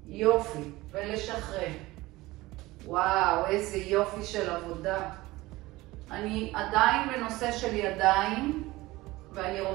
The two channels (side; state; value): left; quieter; 19.4 dB